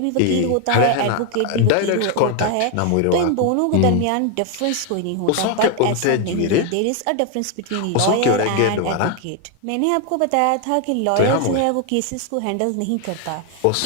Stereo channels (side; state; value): both; different; correlation 0.01